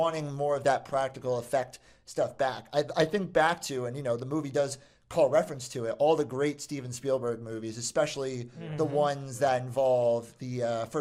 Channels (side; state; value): both; identical; correlation 1.00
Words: more of that practical effect stuff back. I think back to, and the movie does call reference to it, all the great Steven Spielberg movies, especially the ones that involve the